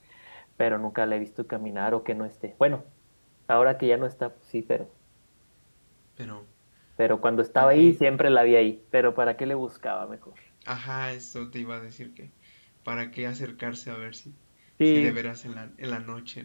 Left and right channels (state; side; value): inverted; both; correlation -1.00